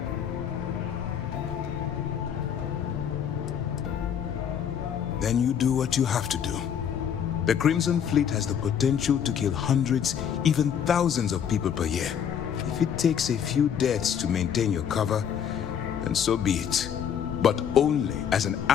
Then you do what you have to do. The Crimson Fleet has the potential to kill hundreds, even thousands of people per year. If it takes a few deaths to maintain your cover, then so be it. But only as an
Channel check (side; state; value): right; quieter; 8.4 dB